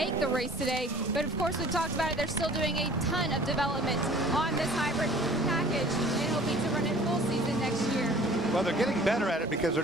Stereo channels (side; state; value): both; normal; correlation 0.50